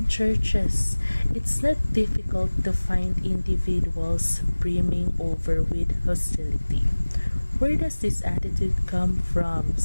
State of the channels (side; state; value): both; inverted; correlation -1.00